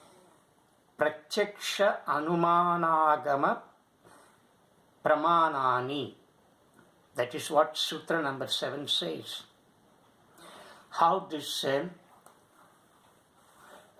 Pratyaksha, Anumana, Agama, Pramanani. That is what Sutra number 7 says. How this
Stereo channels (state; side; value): identical; both; correlation 1.00